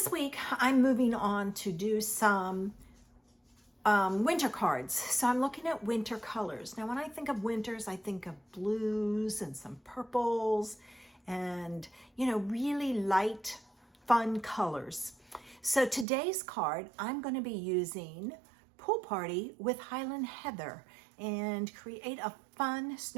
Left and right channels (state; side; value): drops out; left; at 16.1 s